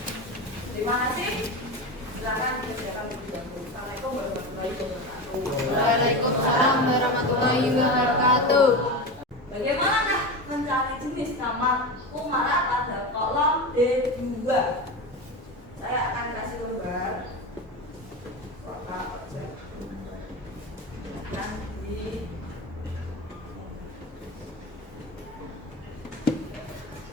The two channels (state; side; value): normal; both; correlation 0.23